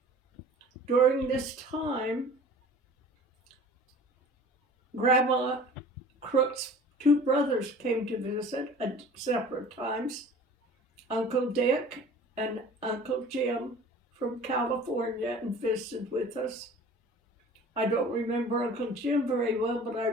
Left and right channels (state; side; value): normal; both; correlation 0.44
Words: During this time, Grandma Crook's two brothers came to visit at separate times. Uncle Dick and Uncle Jim from California and visited with us. I don't remember Uncle Jim very well, but I